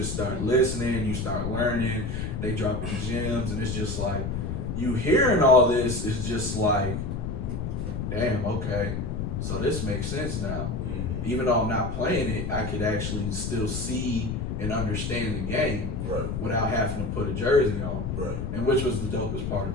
start listening, you start learning, they dropping gems, and it's just like, you hearing all this is just like, damn, okay, so this makes sense now. Even though I'm not playing it, I could actually still see and understand the game without having to put a jersey on. And which was the dopest part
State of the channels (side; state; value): left; noise; rumble, 3 dB below the sound